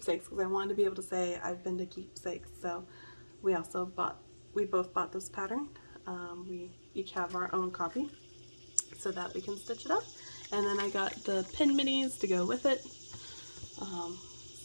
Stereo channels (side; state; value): both; inverted; correlation -1.00